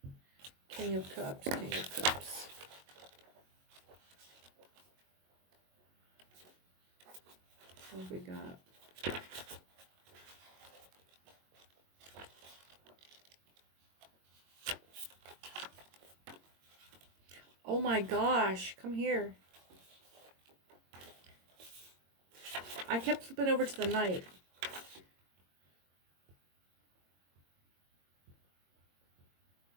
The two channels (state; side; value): late; left; 22 ms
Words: King of Cups. King of Cups. What have we got? Oh my gosh, come here. I kept flipping over to the Knight.